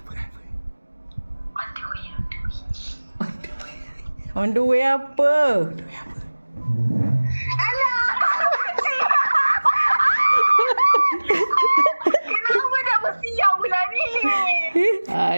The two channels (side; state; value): both; inverted; correlation -1.00